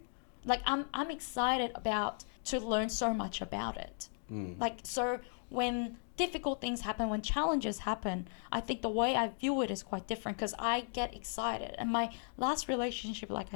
Like, I'm excited to learn so much about it. Like, so when difficult things happen, when challenges happen, I think the way I view it is quite different, because I get excited. And my last relationship, like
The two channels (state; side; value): silent; right; digital silence